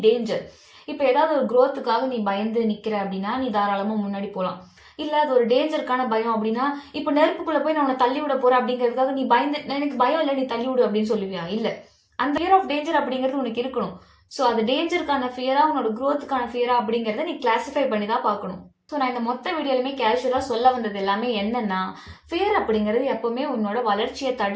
danger? இப்போ ஏதாவது ஒரு growthக்காக நீ பயந்து நிக்கிற அப்படின்னா நீ தாராளமா முன்னாடி போகலாம். இல்ல அது ஒரு டேஞ்சருக்கான பயம் அப்படின்னா, இப்போ நெருப்புக்குள்ள போய் நான் உன்னை தள்ளி விட போறேன் அப்படிங்கிறதுக்காக நீ பயந்து, எனக்கு பயம் இல்லை நீ தள்ளி விடு அப்படின்னு சொல்லுவியா? இல்ல. அந்த ஃபியர் ஆஃப் டேஞ்சர் அப்படிங்கிறது உனக்கு இருக்கணும். ஸோ அது டேஞ்சருக்கான ஃபியரா உன்னோட growthக்கான ஃபியரா அப்படிங்கிறத நீ கிளாசிஃபை பண்ணி தான் பார்க்கணும். ஸோ நான் இந்த மொத்த வீடியோலுமே கேஷுவலா சொல்ல வந்தது எல்லாமே என்னன்னா, ஃபியர் அப்படிங்கிறது எப்பவுமே உன்னோட வளர்ச்சியை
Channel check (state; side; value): identical; both; correlation 1.00